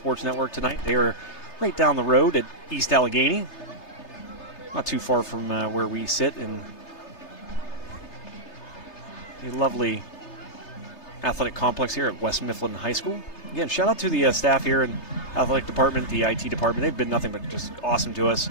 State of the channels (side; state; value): right; late; 3.3 ms